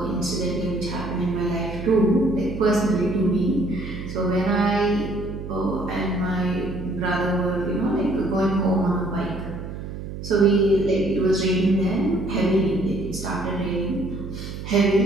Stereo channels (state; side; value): noise; right; hum, 9 dB below the sound